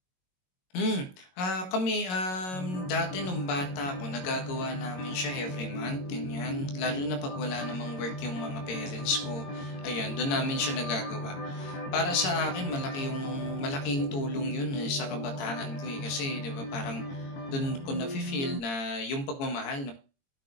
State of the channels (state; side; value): late; right; 22 ms